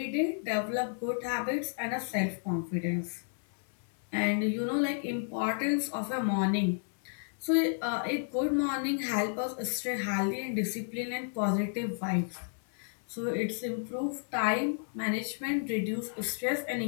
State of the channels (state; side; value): silent; right; 57 dB below the other